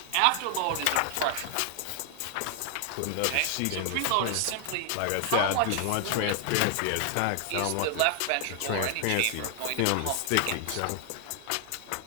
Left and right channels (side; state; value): both; different; correlation 0.00